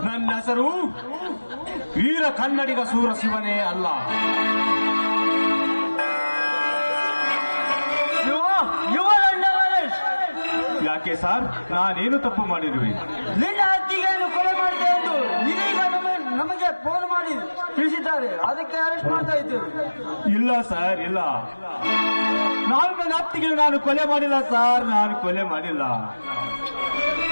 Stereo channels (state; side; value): inverted; both; correlation -1.00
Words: ನನ್ನ ಹೆಸರು ವೀರ ಕನ್ನಡಿಗ ಸೂರ ಶಿವನೇ ಅಲ್ಲ. ಯಾಕೆ ಸರ್, ನಾನೇನು ತಪ್ಪು ಮಾಡಿರುವೆ? ನಿನ್ನ ಅತ್ತಿಗೆಯನ್ನು ಕೊಲೆ ಮಾಡಿದೆ ಎಂದು ಇದೀಗ ನಮಗೆ ಫೋನ್ ಮಾಡಿ ತಿಳಿಸಿದ್ದಾರೆ. ಅದಕ್ಕೆ ಅರೆಸ್ಟ್ ಮಾಡ್ತಾ ಇದ್ದೇವೆ. ಇಲ್ಲ ಸರ್, ಇಲ್ಲ. ನಾನು ನನ್ನ ಅತ್ತಿಗೆ ನಾನು ಕೊಲೆ ಮಾಡಿಲ್ಲ ಸರ್, ನಾನು ಕೊಲೆ ಮಾಡಿಲ್ಲ.